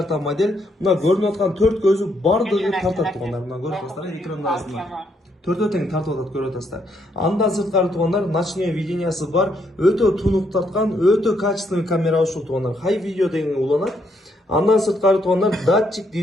модель. Мына көрүнүп аткан 4 көзү бардыгы тартат туугандар. Мына көрүп атасыздар, экрандагысында. Төртөө тең тартып атат, көрүп атасыздар. Андан сырткары туугандар, ночное видениясы бар, өтө тунук тарткан, өтө качественный камера ушул туугандар. High video деген уланат. Андан сырткары туугандар, датчик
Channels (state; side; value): normal; both; correlation 0.74